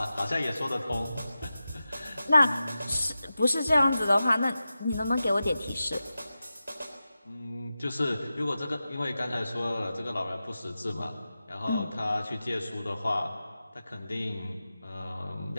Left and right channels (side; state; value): both; inverted; correlation -0.93